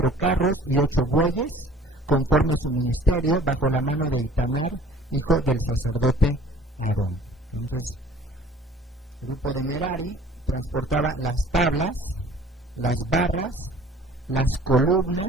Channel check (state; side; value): normal; both; correlation 0.50